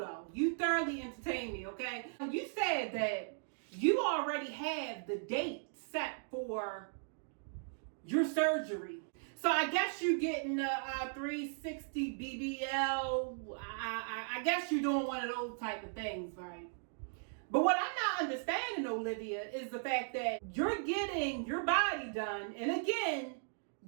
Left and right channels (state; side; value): silent; left; digital silence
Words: You thoroughly entertained me, okay? You said that you already have the date set for your surgery. So I guess you're getting a 360 BBL. I guess you're doing one of those type of things, right? But what I'm not understanding, Olivia, is the fact that you're getting your body done. And again,